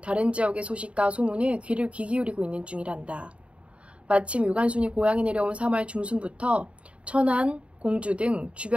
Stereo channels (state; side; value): late; left; 0.061 ms